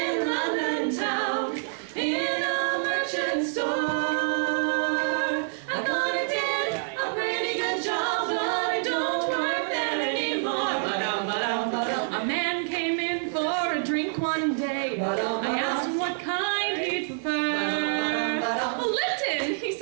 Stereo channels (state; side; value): silent; left; digital silence